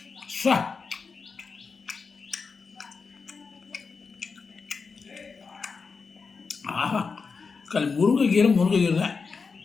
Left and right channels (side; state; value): right; quieter; 4.9 dB